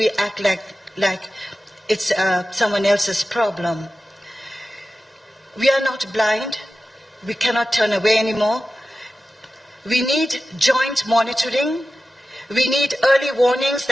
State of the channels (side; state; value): both; normal; correlation 0.94